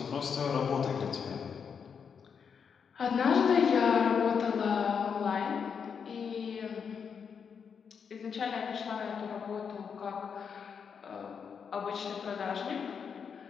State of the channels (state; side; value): quieter; right; 6.6 dB